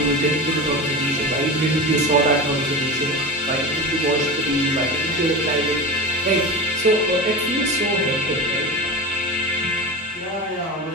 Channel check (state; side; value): normal; both; correlation 0.27